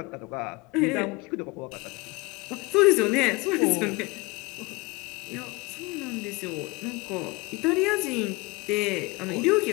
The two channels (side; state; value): right; quieter; 24.9 dB